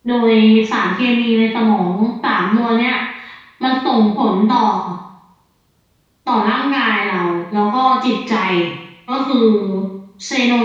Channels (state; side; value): identical; both; correlation 1.00